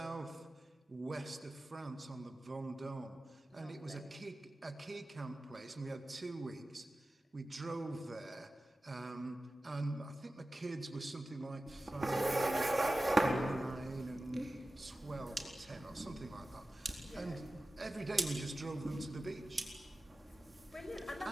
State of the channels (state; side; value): normal; both; correlation 0.95